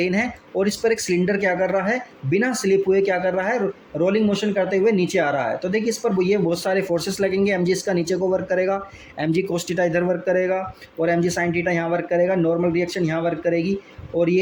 है और इस पर एक सिलेंडर क्या कर रहा है, बिना स्लिप हुए क्या कर रहा है, रोलिंग मोशन करते हुए नीचे आ रहा है। तो देखिए इस पर ये बहुत सारे फोर्सेस लगेंगे। एम जी इसका नीचे को वर्क करेगा, एम जी कोस थीटा इधर वर्क करेगा, और एम जी साइन थीटा यहाँ वर्क करेगा, नॉर्मल रिएक्शन यहाँ वर्क करेगी, और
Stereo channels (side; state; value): both; identical; correlation 1.00